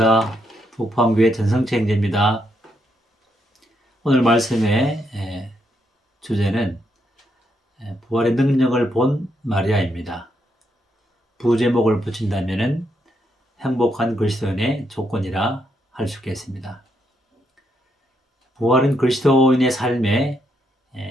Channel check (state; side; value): normal; both; correlation 0.78